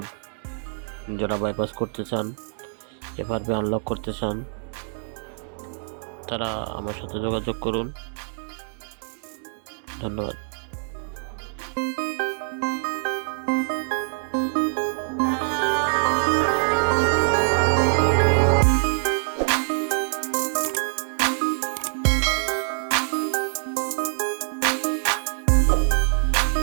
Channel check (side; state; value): left; silent; digital silence